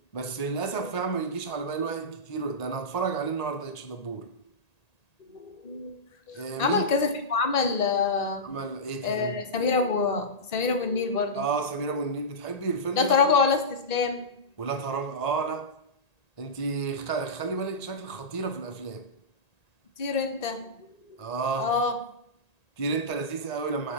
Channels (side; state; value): right; late; 1.8 ms